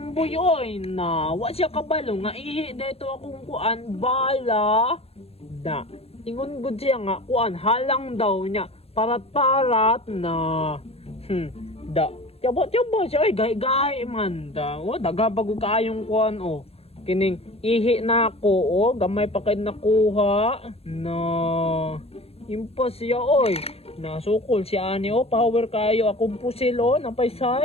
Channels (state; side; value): late; right; 0.29 ms